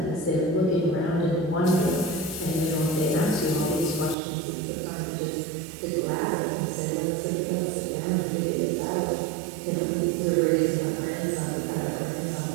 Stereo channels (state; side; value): drops out; left; at 4.2 s